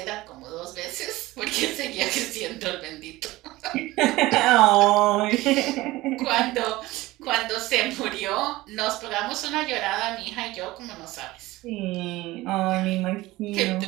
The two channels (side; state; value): left; quieter; 18.8 dB